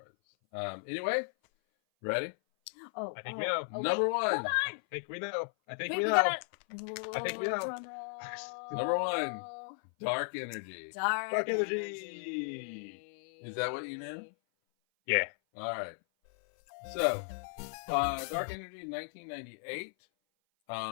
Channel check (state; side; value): silent; right; 54 dB below the other